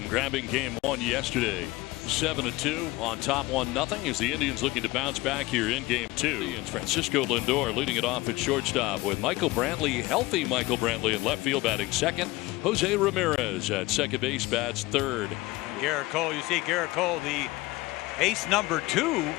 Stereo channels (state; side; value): quieter; right; 20.3 dB